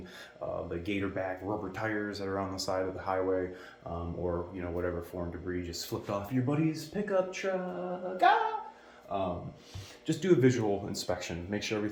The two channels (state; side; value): identical; both; correlation 1.00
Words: the gator back rubber tires that are on the side of the highway, or whatever foreign debris just flipped off your buddy's pickup truck. just do a visual inspection. Make sure